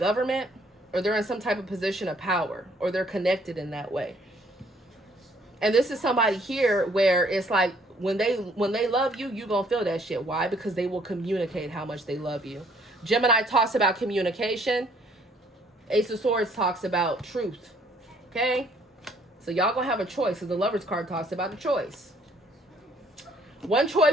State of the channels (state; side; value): normal; both; correlation 0.63